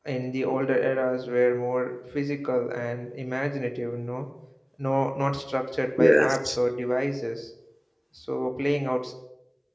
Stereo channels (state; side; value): identical; both; correlation 1.00